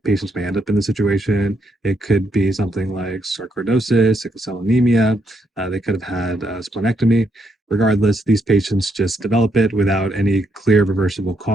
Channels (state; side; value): normal; both; correlation 0.77